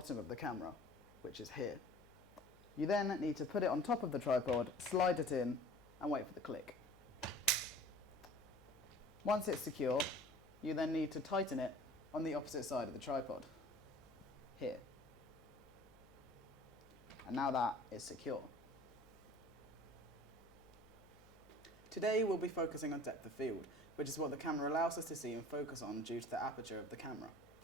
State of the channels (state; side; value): noise; left; hum, 25 dB below the sound